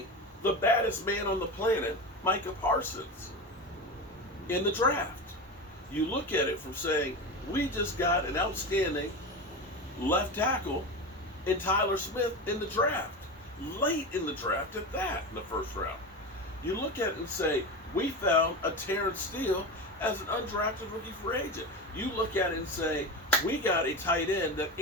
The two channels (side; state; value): both; normal; correlation 0.23